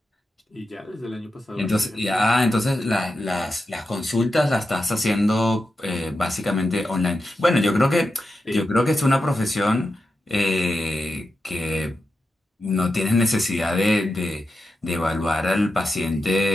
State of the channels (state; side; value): normal; both; correlation 0.89